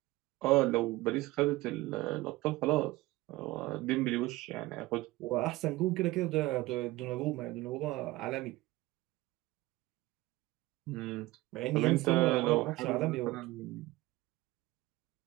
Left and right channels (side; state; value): left; quieter; 19.2 dB